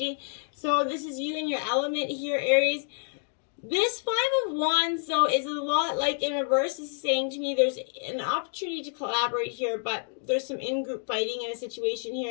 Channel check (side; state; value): right; silent; 56 dB below the other